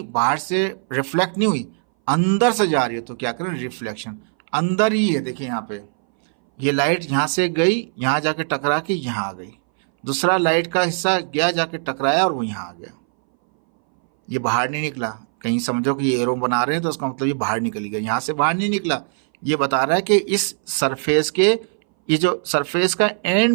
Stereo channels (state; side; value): silent; left; 61 dB below the other